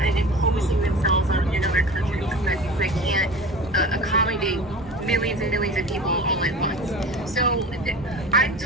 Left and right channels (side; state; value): both; normal; correlation 0.35